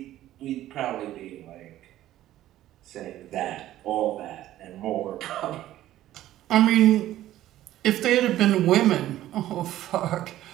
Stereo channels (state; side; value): quieter; left; 13.8 dB